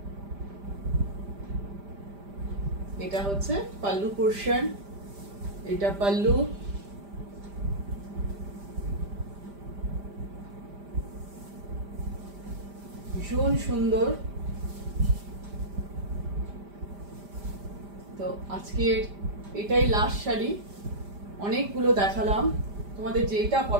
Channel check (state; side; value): late; left; 5.0 ms